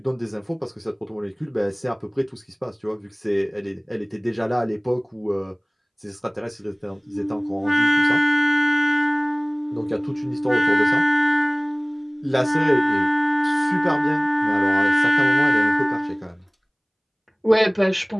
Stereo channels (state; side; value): identical; both; correlation 1.00